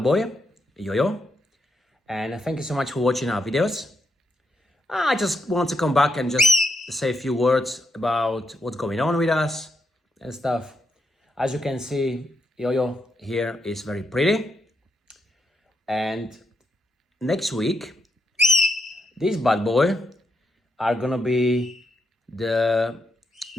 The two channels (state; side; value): normal; both; correlation 0.80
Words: boy, Yo-Yo. And thank you so much for watching our videos. I just want to come back and just say a few words about what's going on with us and stuff. As you can see, Yo-Yo here is very pretty. And next week, this bad boy are gonna be the